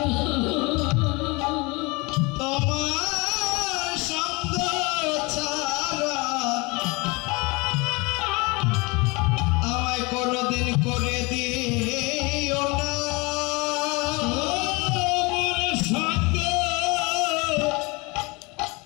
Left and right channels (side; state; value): right; quieter; 26.6 dB